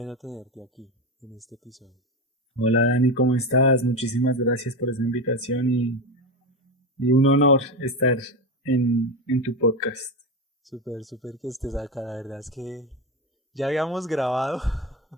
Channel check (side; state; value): both; normal; correlation 0.17